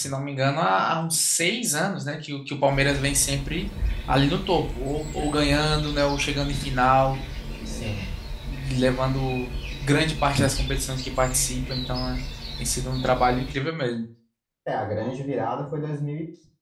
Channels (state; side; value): identical; both; correlation 1.00